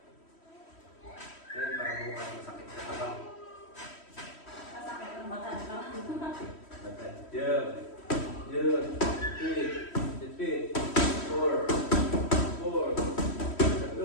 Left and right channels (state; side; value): late; right; 3.1 ms